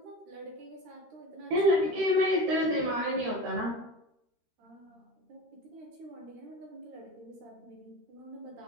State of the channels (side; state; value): left; late; 13 ms